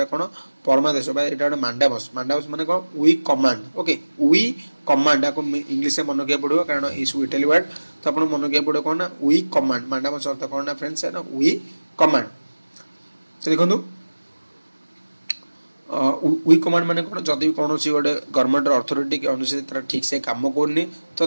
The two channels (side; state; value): both; inverted; correlation -1.00